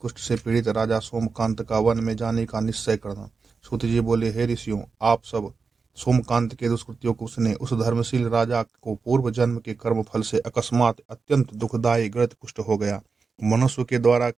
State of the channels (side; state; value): left; quieter; 4.8 dB